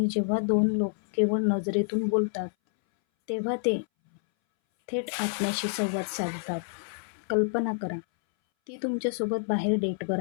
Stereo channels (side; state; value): right; silent; 59 dB below the other